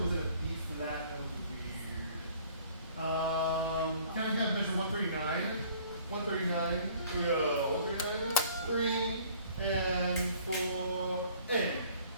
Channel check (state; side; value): inverted; both; correlation -0.54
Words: was it a B flat? That was weird. Can I have measure 139? 139, here we go, 139, 3 and 4, and.